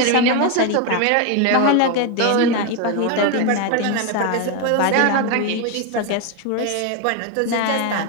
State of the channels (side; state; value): both; different; correlation 0.02